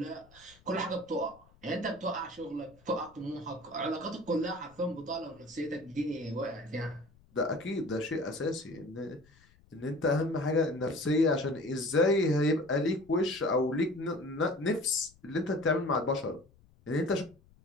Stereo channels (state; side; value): noise; left; rumble, 28 dB below the sound